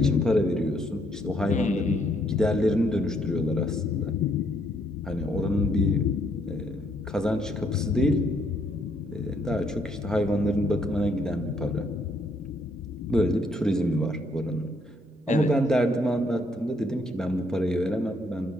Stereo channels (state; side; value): normal; both; correlation 0.70